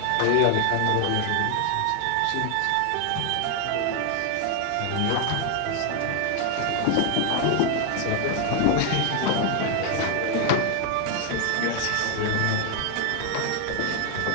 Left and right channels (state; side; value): different; both; correlation 0.00